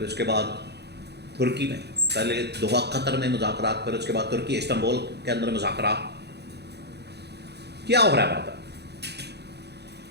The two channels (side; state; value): left; late; 0.48 ms